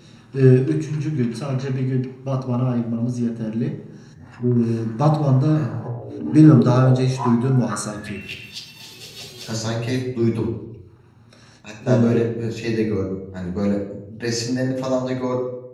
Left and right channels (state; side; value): identical; both; correlation 1.00